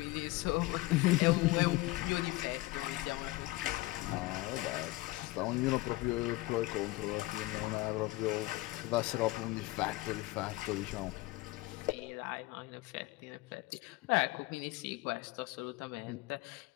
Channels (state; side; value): quieter; right; 20.3 dB